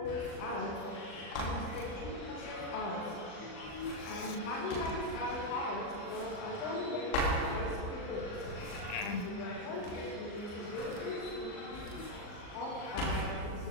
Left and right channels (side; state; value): right; late; 39 ms